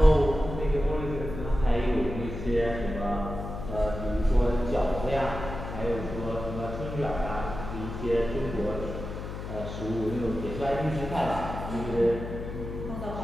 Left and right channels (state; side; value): noise; left; hum, 7 dB below the sound